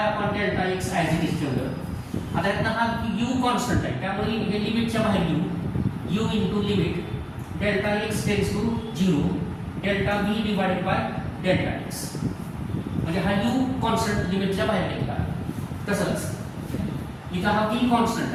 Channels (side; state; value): both; identical; correlation 1.00